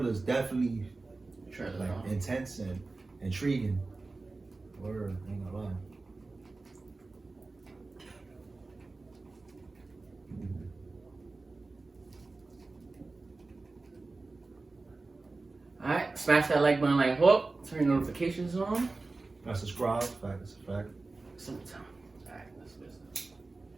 is definitely intense and intriguing. Word, ain't gonna lie. Alright, smash that like button like Hawk. Turn your notifications on. I subscribe. Fact, it's a fact. Sometime. Alright, let's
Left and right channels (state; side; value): quieter; left; 3.5 dB